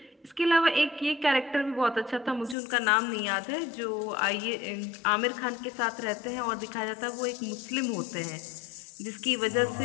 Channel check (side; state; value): right; drops out; at 2.6 s